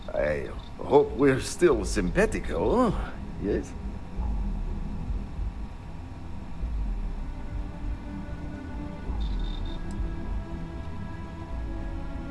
I hope we're still simpatico, yes?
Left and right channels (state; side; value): identical; both; correlation 1.00